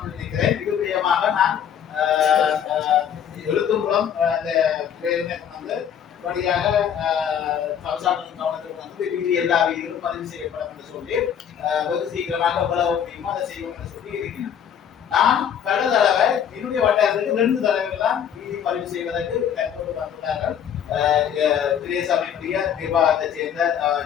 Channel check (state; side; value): quieter; right; 8.7 dB